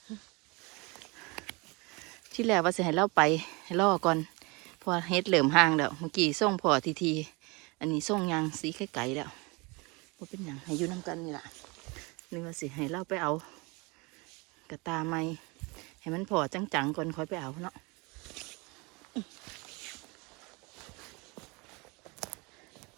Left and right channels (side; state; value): left; quieter; 27.2 dB